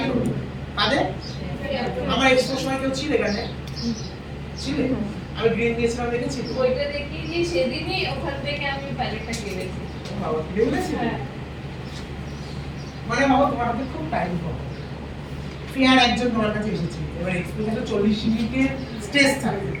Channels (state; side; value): identical; both; correlation 1.00